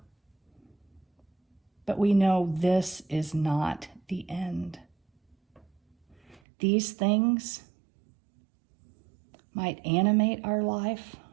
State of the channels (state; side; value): drops out; left; at 6.4 s